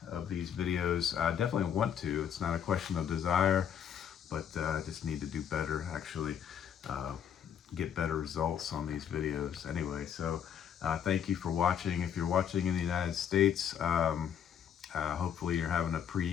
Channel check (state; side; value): quieter; right; 8.6 dB